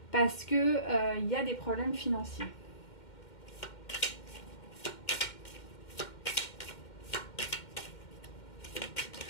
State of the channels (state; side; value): late; right; 2.1 ms